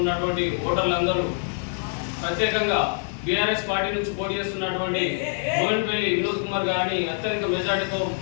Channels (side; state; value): right; silent; 60 dB below the other